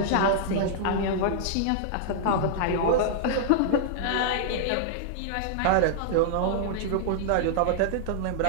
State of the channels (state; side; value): different; both; correlation -0.01